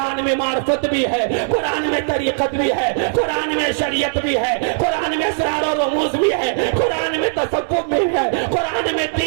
میں معرفت بھی ہے قرآن میں طریقت بھی ہے قرآن میں شریعت بھی ہے قرآن میں اسرار و رموز بھی ہے قرآن میں تصوف بھی ہے قرآن میں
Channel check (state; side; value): silent; left; 67 dB below the other